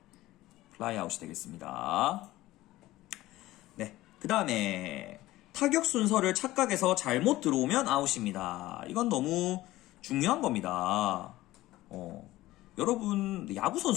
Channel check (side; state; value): right; quieter; 16.8 dB